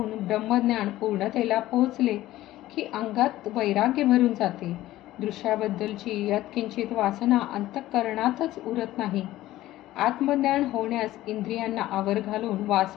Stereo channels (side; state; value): right; quieter; 15.5 dB